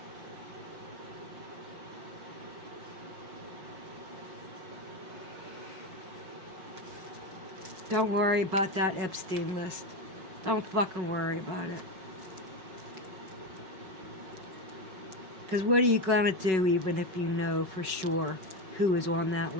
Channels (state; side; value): late; left; 5.4 ms